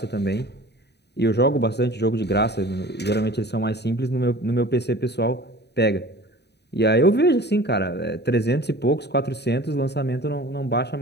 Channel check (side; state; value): right; late; 0.49 ms